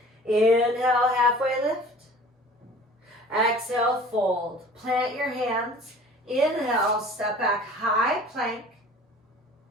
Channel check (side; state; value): both; normal; correlation 0.45